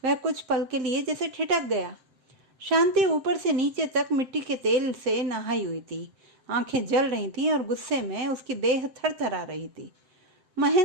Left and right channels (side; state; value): left; late; 7.7 ms